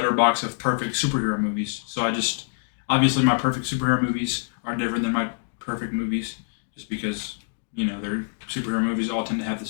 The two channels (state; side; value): silent; right; digital silence